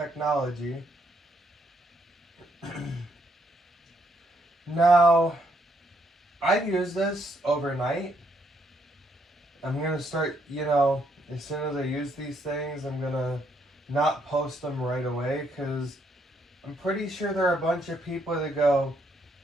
Now, I've used this overnight. I'm going to start, as soon as I use these things, I'm going to not post them right away because I'm pretty sure there are a bunch of people that go,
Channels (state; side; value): normal; both; correlation 0.73